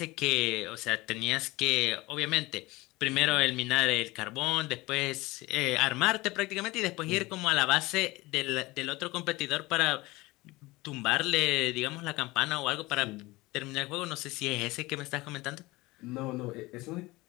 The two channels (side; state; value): right; quieter; 21.1 dB